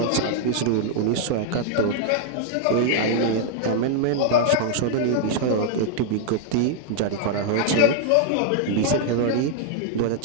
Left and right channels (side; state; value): both; different; correlation 0.00